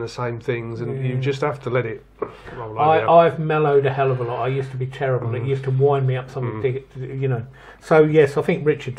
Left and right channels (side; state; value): both; identical; correlation 1.00